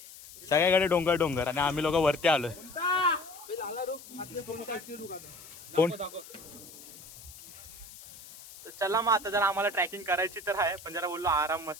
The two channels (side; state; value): left; noise; hiss, 17 dB below the sound